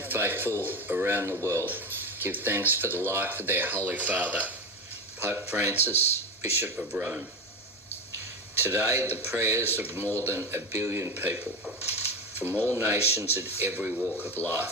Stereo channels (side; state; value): both; normal; correlation 0.20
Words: faithful around the world give thanks for the life of their Holy Father, Pope Francis, Bishop of Rome. Today, the prayers of more than 1 billion people from all nations and every walk of